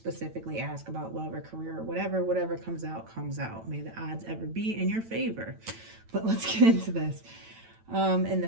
ask about love or career or whatever. Whatever comes out, comes out. May the odds ever be in your favor. But let's get into this. In the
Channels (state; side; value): late; left; 9.0 ms